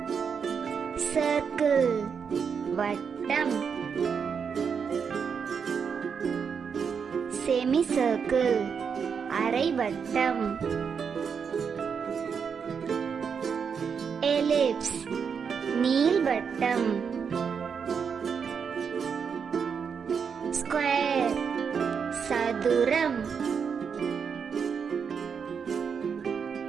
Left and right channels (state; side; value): quieter; left; 6.5 dB